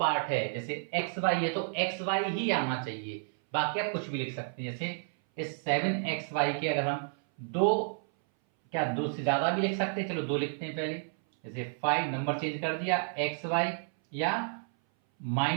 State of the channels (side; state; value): left; silent; 57 dB below the other